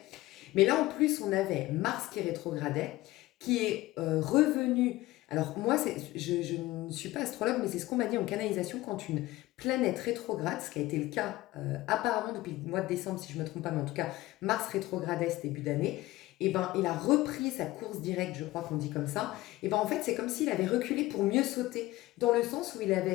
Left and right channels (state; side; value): quieter; right; 17.9 dB